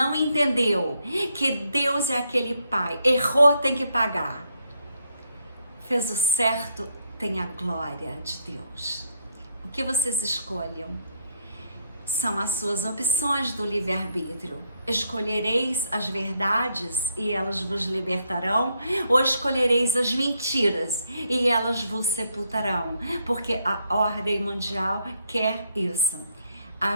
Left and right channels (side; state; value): both; inverted; correlation -0.74